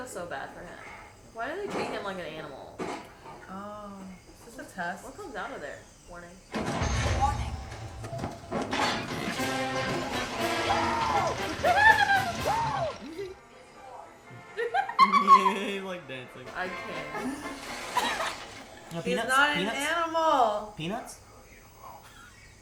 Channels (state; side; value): identical; both; correlation 1.00